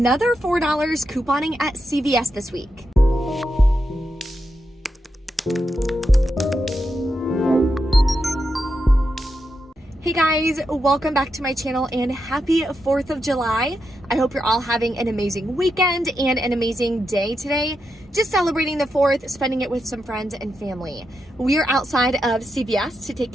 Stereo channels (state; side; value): normal; both; correlation 0.85